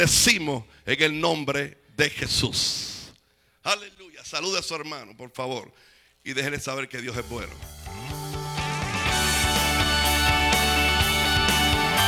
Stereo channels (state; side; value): identical; both; correlation 1.00